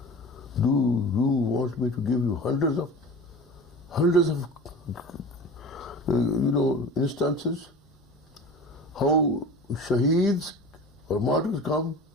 Do you want me to give you hundreds of instances how shaheeds or martyrs come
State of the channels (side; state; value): both; normal; correlation 0.36